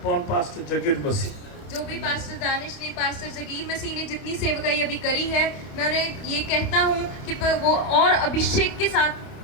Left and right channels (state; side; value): late; right; 29 ms